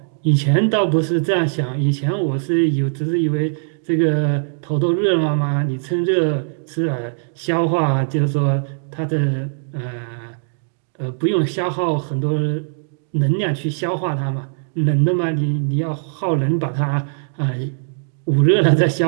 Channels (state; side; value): silent; left; digital silence